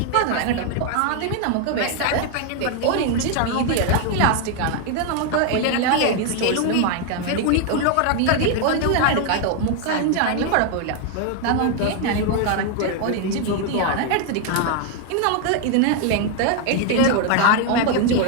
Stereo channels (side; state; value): both; different; correlation 0.00